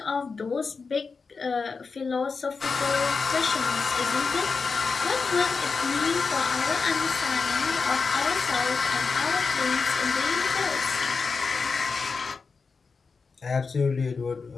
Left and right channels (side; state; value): right; quieter; 4.8 dB